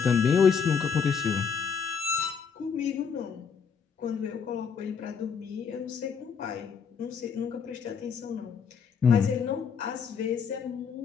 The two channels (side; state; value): right; quieter; 6.3 dB